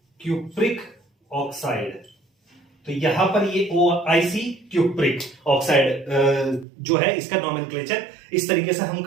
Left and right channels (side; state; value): left; drops out; at 6.7 s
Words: Cupric oxide. तो यहां पर ये OIC क्यूप्रिक ऑक्साइड जो है, इसका नोमेनक्लेचर इस तरीके से हम